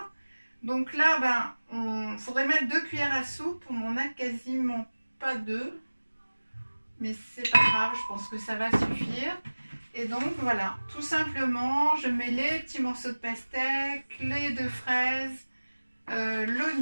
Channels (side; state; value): both; inverted; correlation -1.00